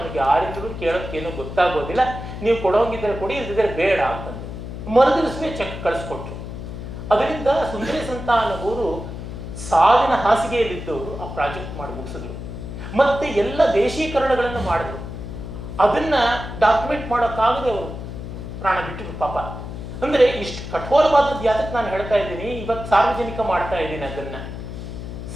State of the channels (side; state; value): left; noise; hum, 9 dB below the sound